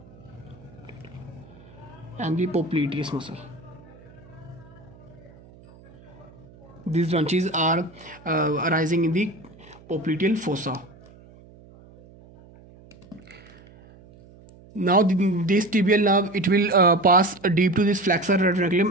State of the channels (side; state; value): right; noise; hum, 23 dB below the sound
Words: and the popliteus muscle. These branches are arising in the popliteal fossa. Now this tibial nerve, it will pass deep to this flexor